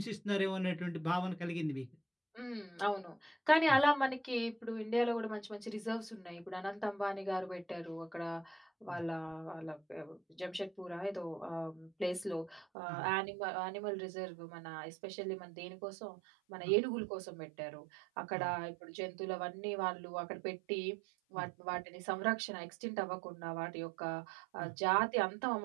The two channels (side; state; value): left; drops out; at 12.7 s